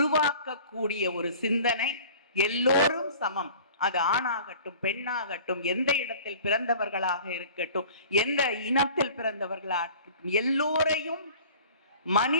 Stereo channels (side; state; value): both; inverted; correlation -0.45